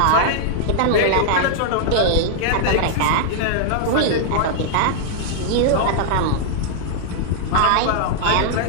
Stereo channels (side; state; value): both; different; correlation -0.01